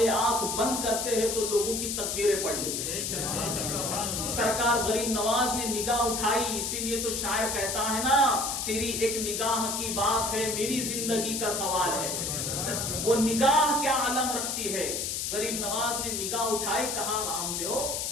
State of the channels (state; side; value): noise; left; hiss, 2 dB below the sound